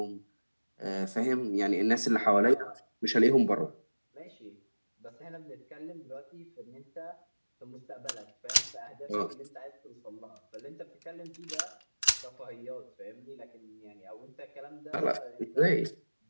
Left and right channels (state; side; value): inverted; both; correlation -1.00